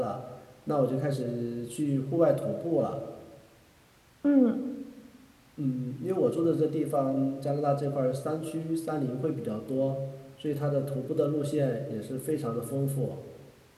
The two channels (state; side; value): identical; both; correlation 1.00